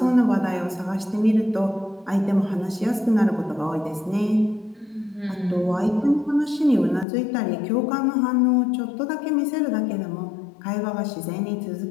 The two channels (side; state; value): right; drops out; at 7.1 s